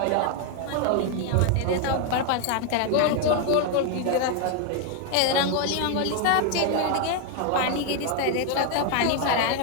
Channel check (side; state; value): both; different; correlation 0.01